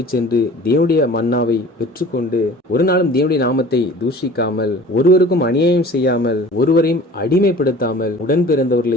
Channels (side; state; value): both; normal; correlation 0.44